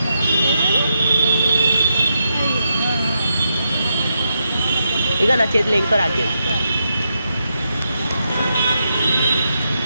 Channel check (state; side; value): inverted; both; correlation -0.83